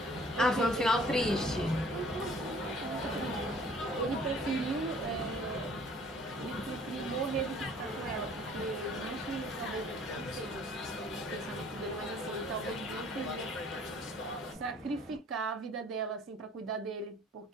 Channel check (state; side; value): normal; both; correlation 0.54